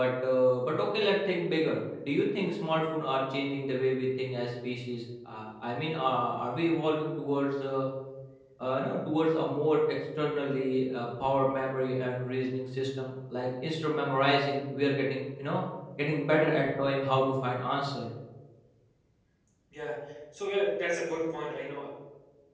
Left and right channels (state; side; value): identical; both; correlation 1.00